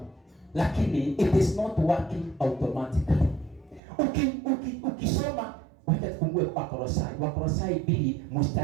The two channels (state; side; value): drops out; left; at 3.8 s